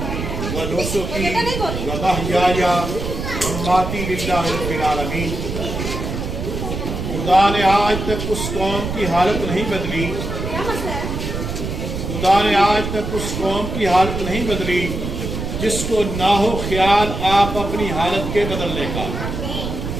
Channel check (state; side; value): noise; right; rumble, 4 dB below the sound